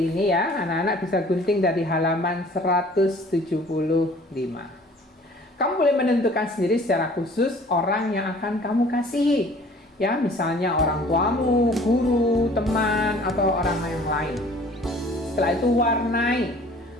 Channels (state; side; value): normal; both; correlation 0.51